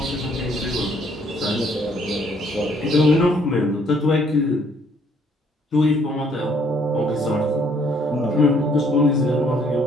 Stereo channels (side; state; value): both; normal; correlation 0.65